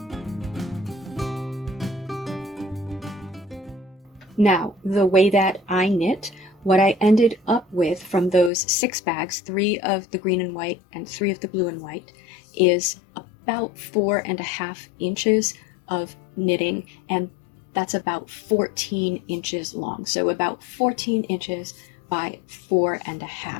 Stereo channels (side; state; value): right; drops out; at 8.5 s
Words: Now, the way that I knit, what I ended up with from those 6 bags, 3 of the green and white and 3 of the blue and white, is about 4.5 inches of knitting, and that's about 14 inches long. So about 14 inches by